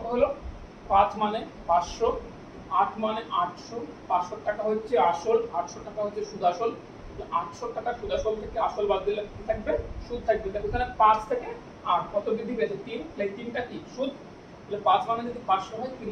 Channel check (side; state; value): both; identical; correlation 1.00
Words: হলো 5 মানে 500, 8 মানে 800, 500 টাকা হচ্ছে আসল, 800 টাকা হচ্ছে সুদ আসল। 800 টাকা সুদ আসল থেকে আসল বাদ দিলে কি থাকবে, সুদ থাকবে। দেখো এখানে 5 থেকে 8 কত বৃদ্ধি পেয়েছে 3, তাহলে 3টা কি সুদ। তাহলে 5 মানে যদি 500 হয়, 3